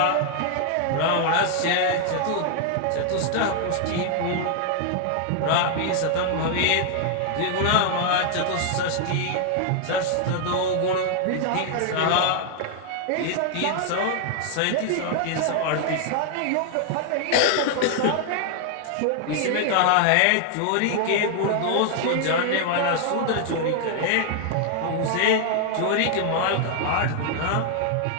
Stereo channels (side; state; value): both; different; correlation 0.00